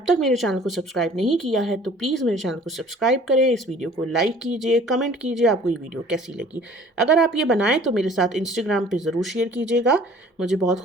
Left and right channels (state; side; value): normal; both; correlation 0.51